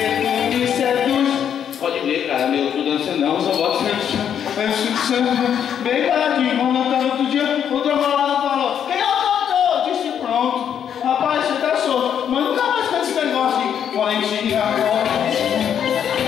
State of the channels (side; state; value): right; quieter; 8.7 dB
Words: tu me seduz. Pode ver, cara, meu, tu dança não, só boto bem paradinho, vamos cantar outro dia, o trombonado falou, quem é o cantor? Eu disse, pronto. Rapaz, você tá solto, mas nunca mais canta esse negócio de Valentina,